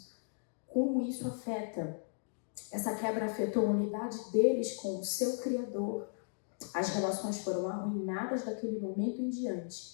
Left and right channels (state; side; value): silent; right; digital silence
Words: Como isso afeta, essa quebra afetou a unidade deles com o seu Criador. As relações foram arruinadas daquele momento em